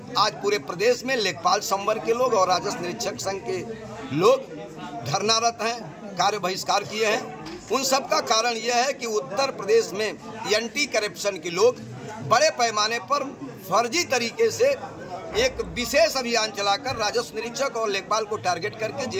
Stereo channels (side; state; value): both; identical; correlation 1.00